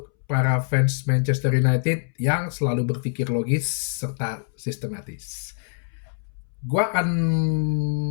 para fans Manchester United yang selalu berpikir logis serta sistematis. Gua akan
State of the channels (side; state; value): right; silent; 62 dB below the other